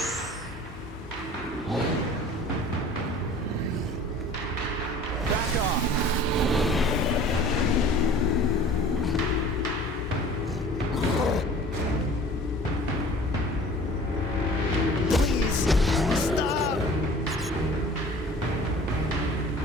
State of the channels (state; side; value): normal; both; correlation 0.46